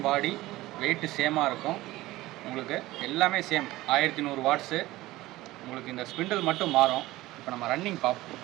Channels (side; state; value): left; quieter; 17.8 dB